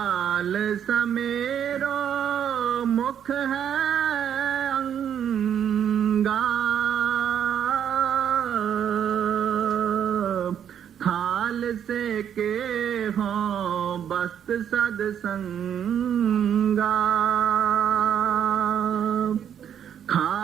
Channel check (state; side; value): quieter; left; 9.0 dB